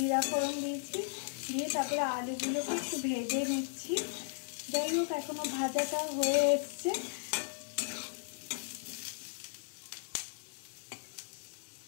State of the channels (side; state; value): right; silent; 54 dB below the other